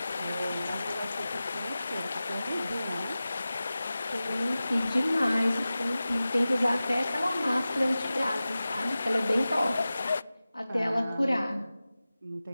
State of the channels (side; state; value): both; inverted; correlation -0.96